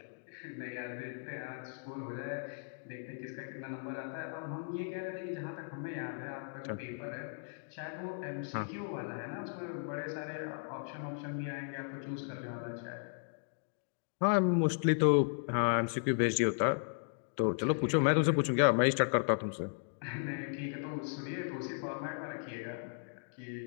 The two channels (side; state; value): right; silent; digital silence